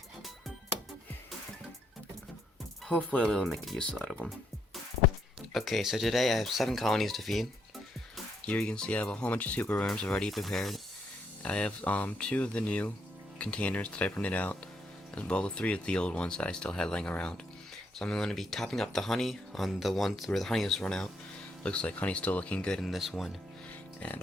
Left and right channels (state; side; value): normal; both; correlation 0.75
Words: Hopefully I'll be able to make a use out of them. Okay, so today I have 7 colonies to feed. Here you can see I have a whole bunch of super worms already prepared. I have 2 of the new containers that I printed out, as well as 3 of the old ones that I still had laying around. So I'm going to be topping up the honey on the ones where the honey has run out. Looks like honey's still looking good in this one, and